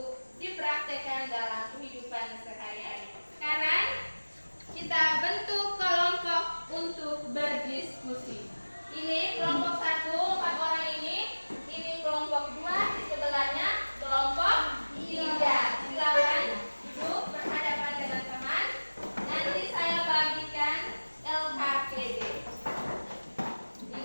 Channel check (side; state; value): both; inverted; correlation -1.00